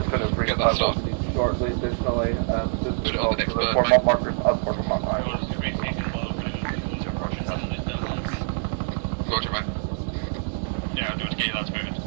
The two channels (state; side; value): silent; left; 62 dB below the other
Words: going to bring that started shortly. Additionally, put it on the next bird, mate. Roger, mate. Yeah, I'm doing to get your lads moving